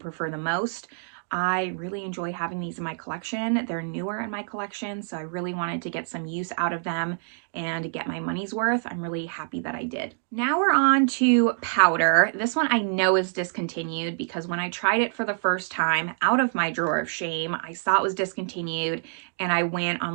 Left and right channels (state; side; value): silent; left; digital silence